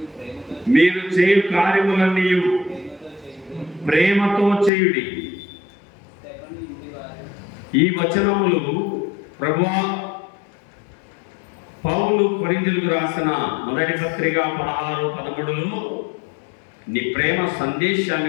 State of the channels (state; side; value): drops out; right; at 4.7 s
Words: మీరు చేయు కార్యములన్నీ ప్రేమతో చేయుడి. ఈ వచనములు ప్రభువా పౌలు కొరింథీయులకు రాసిన మొదటి పత్రిక 16:13లో నీ ప్రేమ